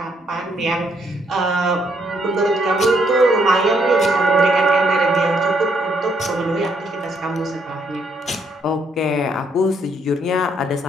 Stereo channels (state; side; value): normal; both; correlation 0.72